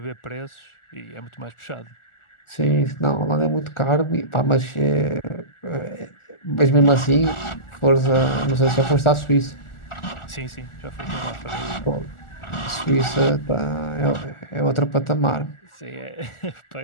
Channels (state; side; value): late; right; 1.4 ms